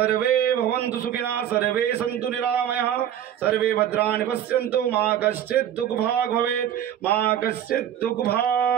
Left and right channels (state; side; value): quieter; left; 10.4 dB